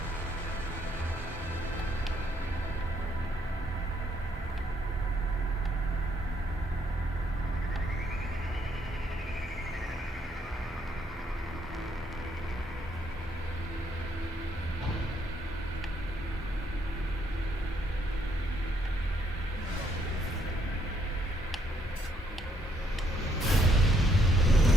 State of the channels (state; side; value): normal; both; correlation 0.71